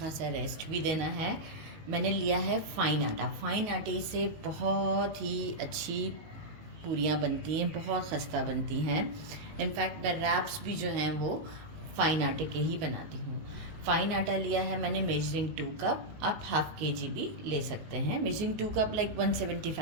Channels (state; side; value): late; left; 19 ms